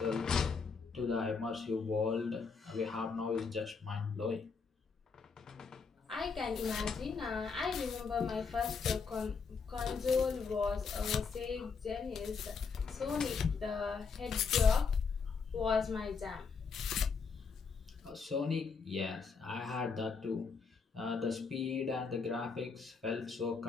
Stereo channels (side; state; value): right; quieter; 5.2 dB